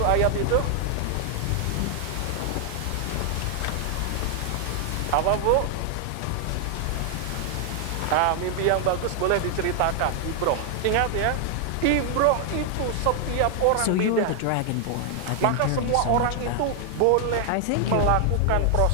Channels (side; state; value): both; different; correlation 0.00